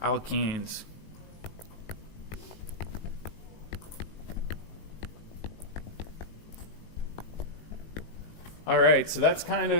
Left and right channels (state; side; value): late; right; 18 ms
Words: alkenes. All right, so that's kind